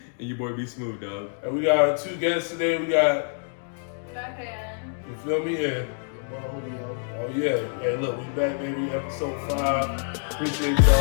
your boy be smooth, dog. And we got our two guests today. We got, you feel me? And, oh yeah. Hey, look, we back, baby. Episode 5. Appreciate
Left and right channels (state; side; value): silent; right; 61 dB below the other